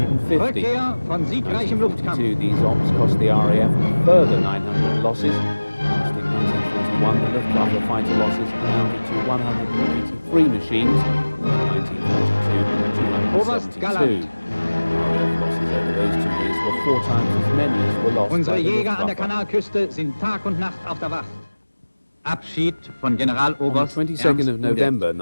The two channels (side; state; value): both; inverted; correlation -1.00